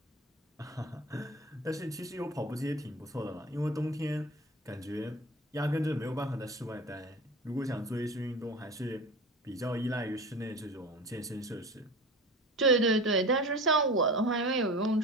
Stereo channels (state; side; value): normal; both; correlation 0.33